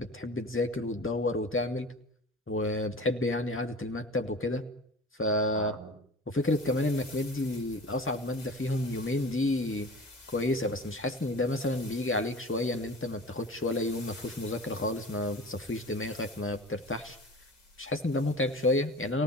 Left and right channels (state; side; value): normal; both; correlation 0.39